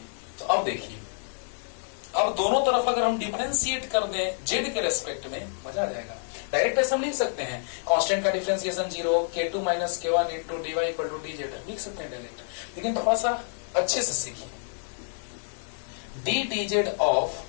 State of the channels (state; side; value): silent; right; digital silence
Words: तो अब देखिए, अब दोनों तरफ अगर हम डिफरेंशिएट कर दें जेड के रेस्पेक्ट में, मजा आ जाएगा। डायरेक्ट ऐसे हम लिख सकते हैं, कांस्टेंट का differentiation 0, k2 minus k1 into dy equal to D Z, लिख सकते हैं डायरेक्ट, लेकिन थोड़ा सा अच्छे से सीखिए। D D Z of